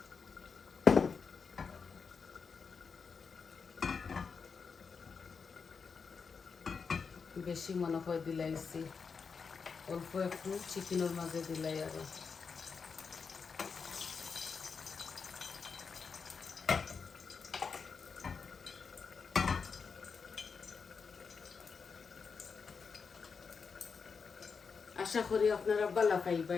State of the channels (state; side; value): quieter; right; 5.5 dB